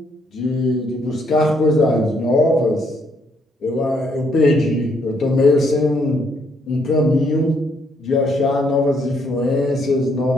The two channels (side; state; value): both; normal; correlation 0.71